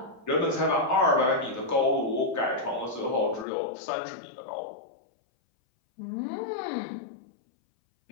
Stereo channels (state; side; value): drops out; right; at 3.5 s